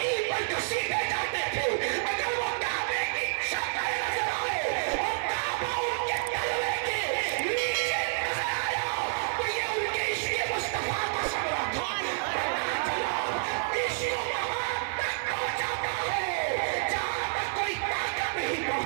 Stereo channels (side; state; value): left; silent; 58 dB below the other